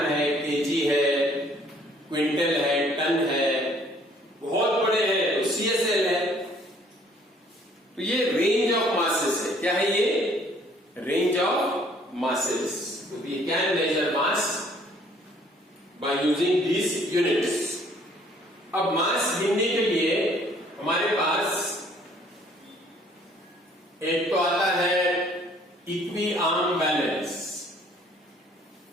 है, केजी है, क्विंटल है, टन है, बहुत बड़े हैं तो CSL है। तो ये रेंज ऑफ मासेस है। क्या है ये? Range of masses. We can measure mass by using these units. अब मास गिनने के लिए हमारे पास एक तो आता है इक्वी आर्म बैलेंस,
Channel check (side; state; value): both; normal; correlation 0.60